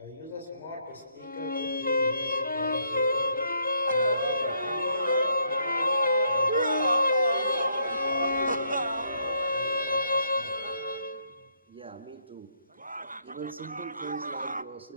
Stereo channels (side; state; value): both; inverted; correlation -0.72